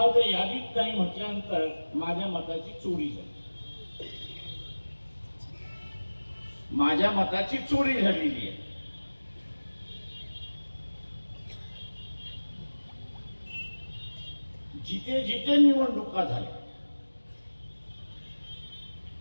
ते यादीत नाही म्हटल्यानंतर माझ्या मताची चोरी झाली. माझ्या मताची चोरी झालेली आहे. जिथे जिथे निवडणुका झाल्या,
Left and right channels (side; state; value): both; inverted; correlation -1.00